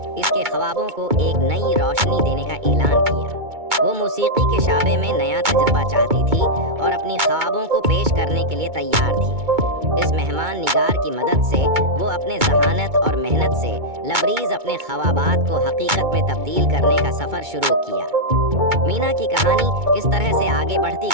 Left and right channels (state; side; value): late; left; 2.2 ms